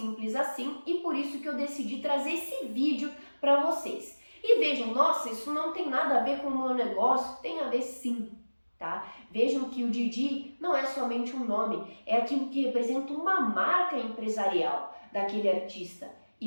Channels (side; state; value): both; inverted; correlation -1.00